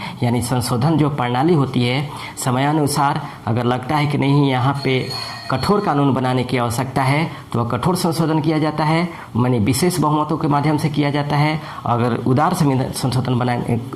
यानी संशोधन जो प्रणाली होती है समयानुसार अगर लगता है कि नहीं यहाँ पे कठोर कानून बनाने की आवश्यकता है तो वह कठोर संशोधन किया जाता है, माने विशेष बहुमतों के माध्यम से किया जाता है। अगर उदार संशोधन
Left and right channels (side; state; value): both; identical; correlation 1.00